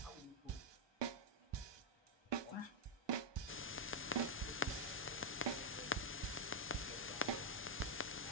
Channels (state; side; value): normal; both; correlation -0.01